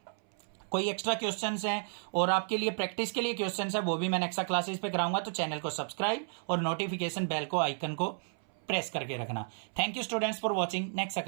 कोई एक्स्ट्रा क्वेश्चंस हैं और आपके लिए प्रैक्टिस के लिए क्वेश्चंस है, वो भी मैं एक्स्ट्रा क्लासेस पे कराऊंगा, तो चैनल को सब्सक्राइब और नोटिफिकेशन बेल को आइकन को प्रेस करके रखना। Thank you students for watching next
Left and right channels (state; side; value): silent; left; 56 dB below the other